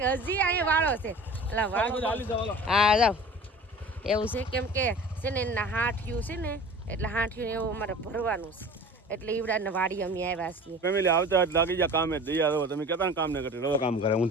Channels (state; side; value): normal; both; correlation 0.41